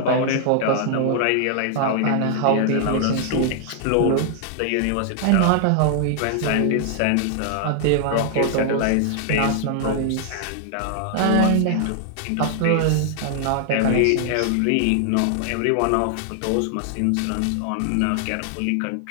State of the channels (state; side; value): different; both; correlation -0.01